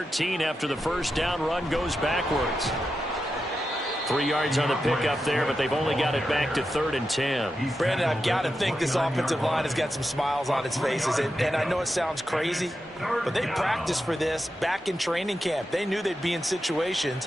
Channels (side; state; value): both; normal; correlation 0.89